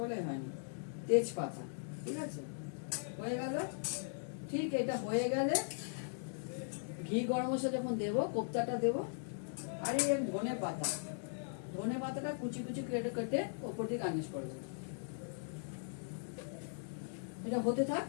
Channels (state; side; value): silent; right; 52 dB below the other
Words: হয়নি। তেজপাতা, ঠিক আছে, হয়ে গেল। ঠিক এটা হয়ে গেলে ঘি গরম মশলা যখন দেবো, কোপ্তাটা দেবো। আর এই ধনে পাতা, ধনে পাতাটা কুচি কুচি কেটে কেটে ওপর দিয়ে গার্নিশ করবো। এটা হতে থাক,